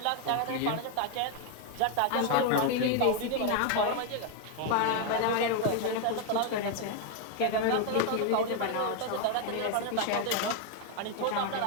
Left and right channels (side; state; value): both; different; correlation 0.01